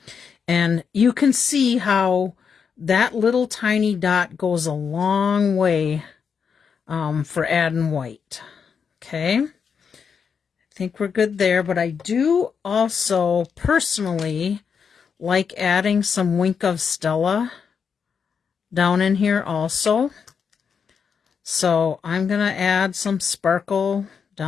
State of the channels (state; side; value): quieter; right; 6.4 dB